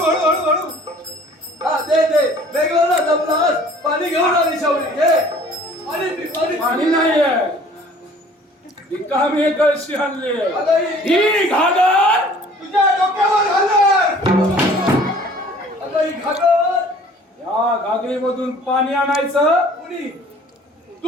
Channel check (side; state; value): both; normal; correlation 0.52